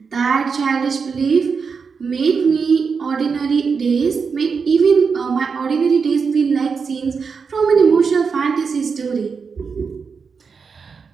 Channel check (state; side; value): quieter; left; 5.5 dB